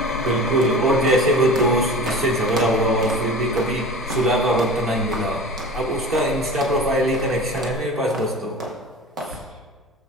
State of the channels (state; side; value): normal; both; correlation 0.36